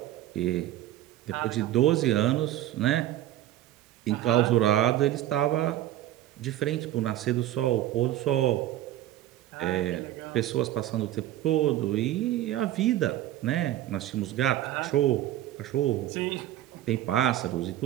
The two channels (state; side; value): quieter; left; 13.6 dB